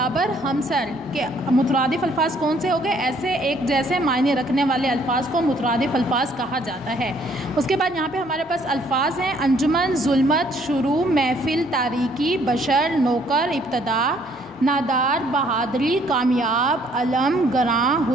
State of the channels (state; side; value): normal; both; correlation 0.63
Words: हमसर के मुतरादिफ अल्फाज कौन से हो गए? ऐसे एक जैसे मायने रखने वाले अल्फाज को मुतरादिफ अल्फाज कहा जाता है। उसके बाद यहाँ पे हमारे पास अल्फाज हैं अंजुमन, जुल्मत, शुरू, महफिल, तारीकी, बशर, नौकर, इब्तदा, नादार, बहादरी, कामयाब, अलम, गरां,